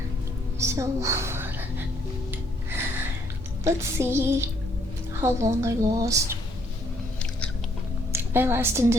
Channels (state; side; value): normal; both; correlation 0.68